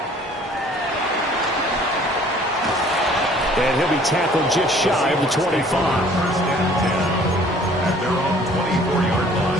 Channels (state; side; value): normal; both; correlation 0.55